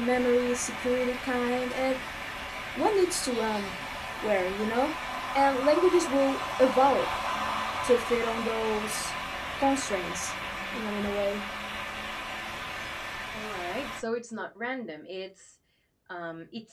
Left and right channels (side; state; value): both; identical; correlation 1.00